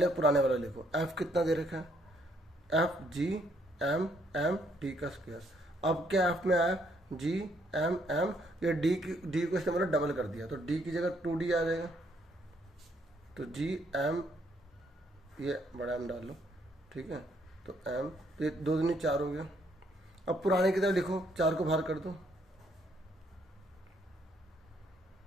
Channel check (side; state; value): both; normal; correlation 0.70